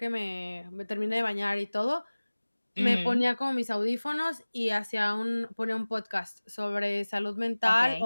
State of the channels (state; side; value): inverted; both; correlation -1.00